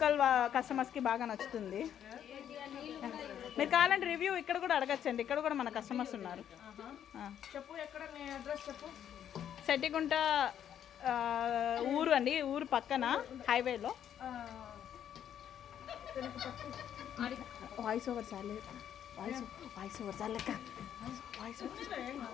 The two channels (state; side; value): quieter; right; 9.7 dB